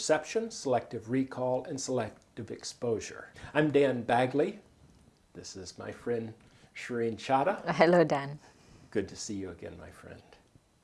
selective recall, and selective exposure. I'm Dan Bagley. This is my friend Shireen Chadha. Hello, Dan. Good to see you again, my friend.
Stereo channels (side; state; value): both; identical; correlation 1.00